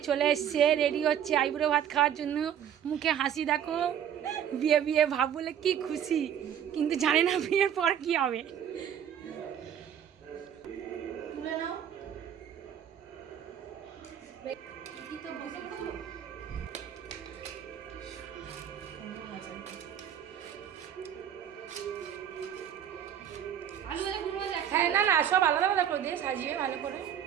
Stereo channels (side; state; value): left; quieter; 9.3 dB